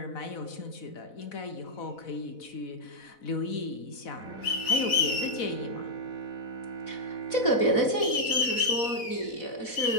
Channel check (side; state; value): right; late; 4.1 ms